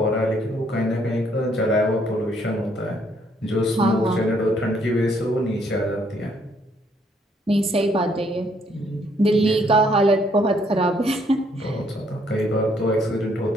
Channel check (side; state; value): both; normal; correlation 0.68